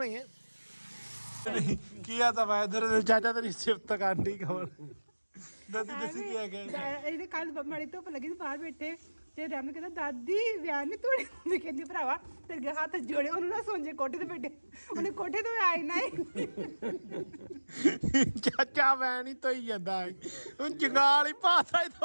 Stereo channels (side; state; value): both; inverted; correlation -1.00